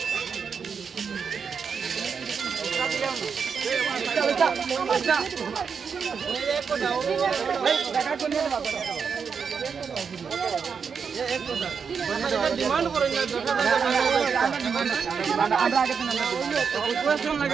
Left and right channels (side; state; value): left; quieter; 6.2 dB